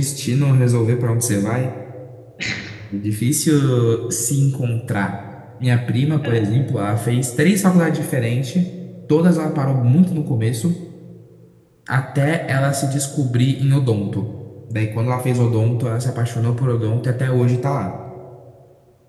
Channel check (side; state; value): both; identical; correlation 1.00